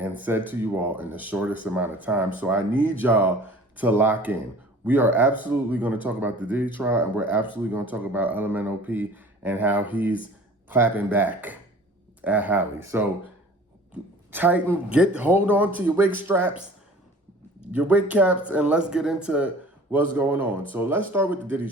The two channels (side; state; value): both; normal; correlation 0.46